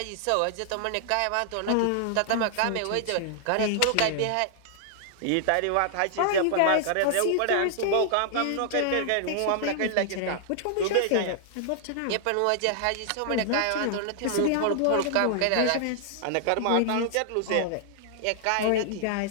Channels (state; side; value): different; both; correlation -0.01